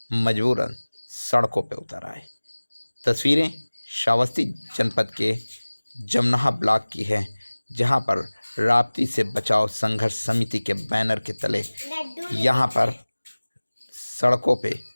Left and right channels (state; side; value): inverted; both; correlation -1.00